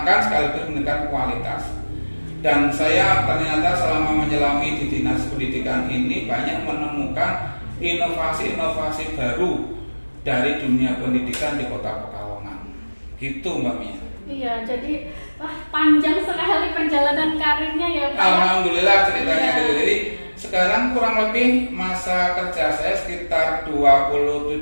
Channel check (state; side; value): inverted; both; correlation -1.00